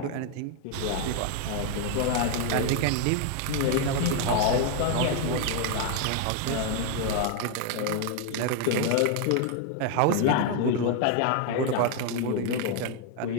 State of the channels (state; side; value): different; both; correlation 0.00